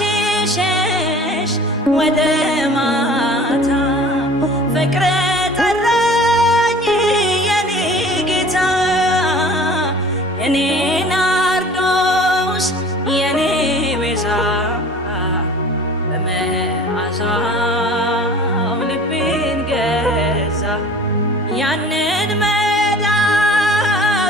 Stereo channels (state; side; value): normal; both; correlation 0.44